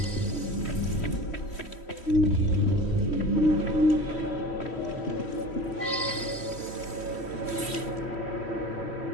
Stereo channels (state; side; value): late; right; 3.1 ms